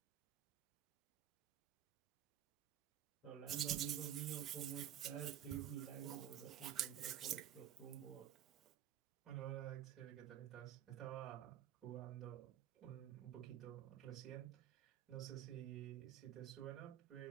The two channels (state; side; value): quieter; left; 10.7 dB